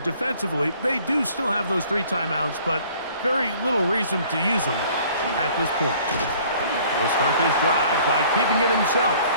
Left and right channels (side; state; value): both; inverted; correlation -0.54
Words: they do still have those 3 timeouts, but very little reason to use them at this point. He'll start this drive by keeping it himself.